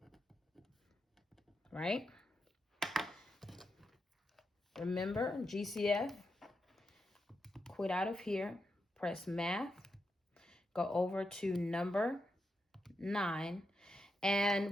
right? Remember, GCF, quit out of here, press math, go over to number 9,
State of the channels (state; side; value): normal; both; correlation 0.85